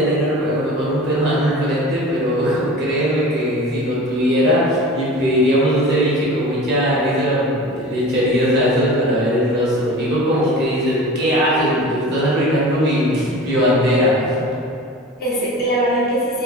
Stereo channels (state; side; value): normal; both; correlation 0.37